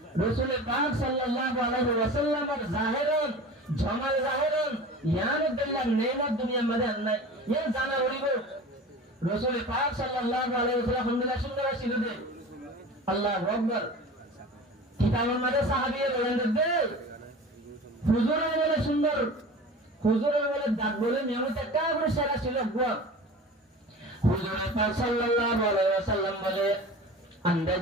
রাসূল পাক সাল্লাল্লাহু আলাইহি ওয়াসাল্লামের জাহিরন জামাল জাহিরন ইয়ার দিল্লাহ নেমত দুনিয়ার মধ্যে নাই ইয়া জানা করিব রাসূল পাক সাল্লাল্লাহু আলাইহি ওয়াসাল্লাম আলহামদুলিল্লাহ সুন্দর ছিল দে আল্লাহু আকবার কিতাবের মধ্যে সাহাবীরা বলেন দে হুজুরের বলে সুন্দর হুজুরের বলে দাঁত বলে নিয়মিত একটা করে সেরা ছিল হুজুর পাক সাল্লাল্লাহু আলাইহি ওয়াসাল্লাম বলে আন্দাজ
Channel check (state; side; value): normal; both; correlation 0.37